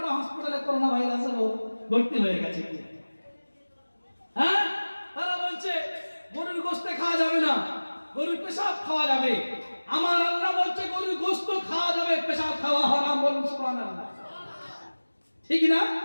হাসপাতালে করোনা ভাইরাসে ভর্তি হয়ে গেছে। হ্যাঁ, তারা বলছে গরুর গোশত খাওয়া যাবে না, গরুর পেশাব খাওয়া যাবে। আমার আল্লাহ বলছে গরুর গোশত খাওয়া যাবে, পেশাব খাওয়া হারাম। বলুন সুবহানাল্লাহ, ঠিক না?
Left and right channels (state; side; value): inverted; both; correlation -1.00